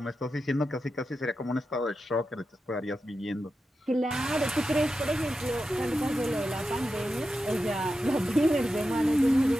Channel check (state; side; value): normal; both; correlation 0.90